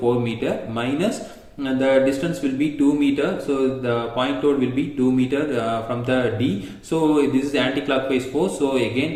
meter minus the distance will be 2 meter. So the point load will be 2 meter from the D. So this is the anti-clockwise force. So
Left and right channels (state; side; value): identical; both; correlation 1.00